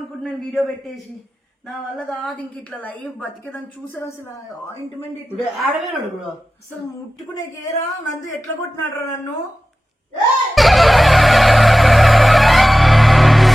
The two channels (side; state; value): both; normal; correlation 0.95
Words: వీడియో పెట్టేసి. నా వల్ల కాదు ఇంక ఇట్లా లైఫ్ బతికేదాన్ని. చూసారు అసలు ఆయింట్మెంట్ ఆడవేనాడు కూడా అసలు ముట్టుకునే కేరా. నందు ఎట్లా కొట్టినాడు నన్ను.